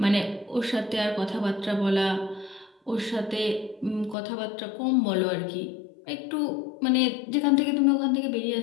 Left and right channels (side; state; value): right; drops out; at 4.2 s